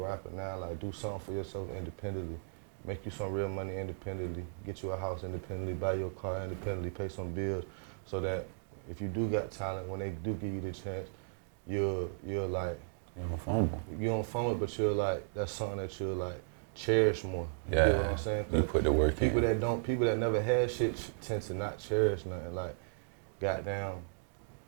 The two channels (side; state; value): left; silent; digital silence